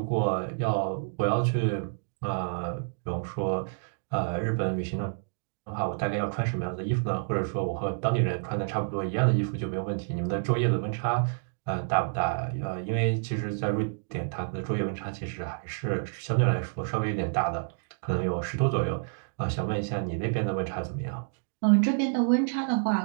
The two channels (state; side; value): silent; left; digital silence